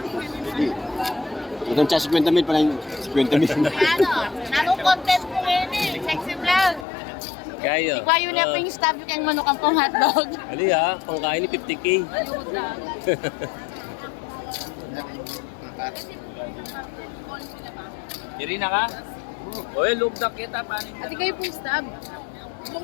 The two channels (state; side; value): drops out; right; at 6.9 s